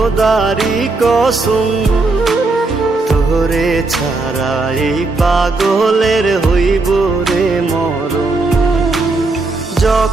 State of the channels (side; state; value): left; quieter; 3.4 dB